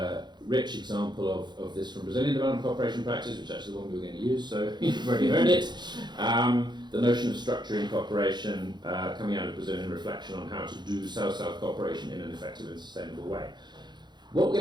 rich example of this from Brazilian development cooperation practice, which is actually the one we were going to use, so you've already heard it. The notion of structuring cooperation coming out of Brazilian reflection on how to do South-South cooperation in an effective and sustainable way. What we're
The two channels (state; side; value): late; left; 0.21 ms